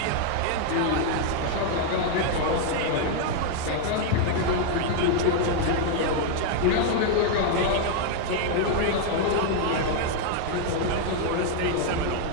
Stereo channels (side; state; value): both; different; correlation 0.00